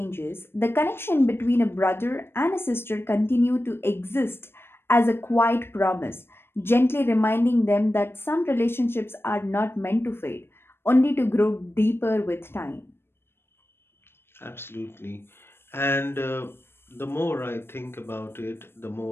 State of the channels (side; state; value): right; late; 0.11 ms